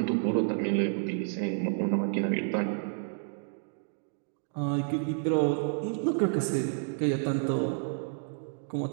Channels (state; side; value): silent; left; digital silence